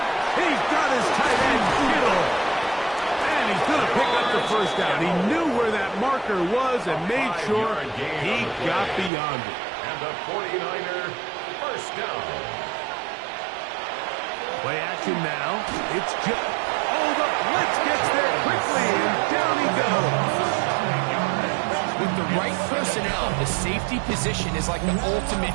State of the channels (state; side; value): drops out; left; at 9.1 s